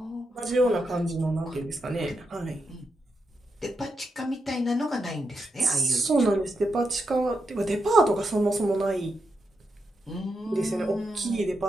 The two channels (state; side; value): normal; both; correlation 0.84